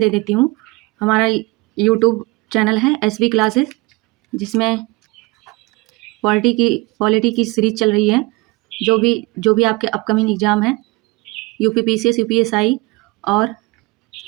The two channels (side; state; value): left; quieter; 24.2 dB